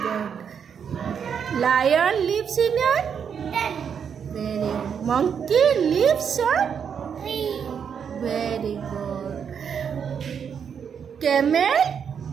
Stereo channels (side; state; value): left; quieter; 7.3 dB